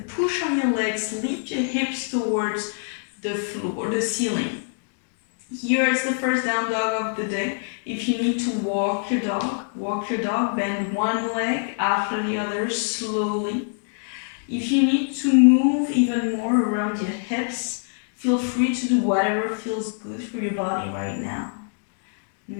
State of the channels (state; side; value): silent; right; digital silence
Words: push on your legs. Lift your hips towards the floor, the ceiling. Here is the first down dog of the day. If you need to walk your dog, bend one leg after the other slowly. If you need to move even more around your hips, feel free to do whatever feels good for your body right now.